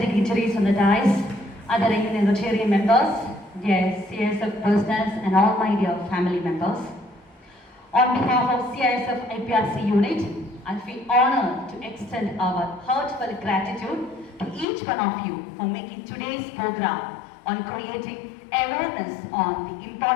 dignitaries on the dais, other Rotarian members, dear CISF presidents and all my dear family members. On behalf of CISF IPRC unit, I feel honored to extend our heartfelt gratitude to each one of you for making today's program on creating awareness on the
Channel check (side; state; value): right; drops out; at 14.7 s